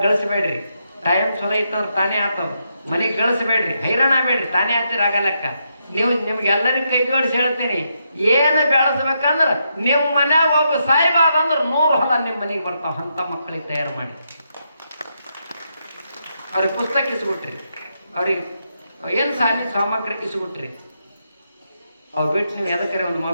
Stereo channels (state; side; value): inverted; both; correlation -0.81